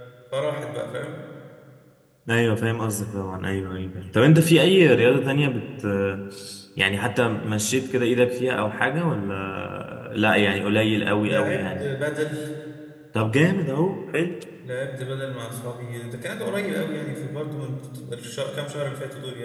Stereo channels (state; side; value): identical; both; correlation 1.00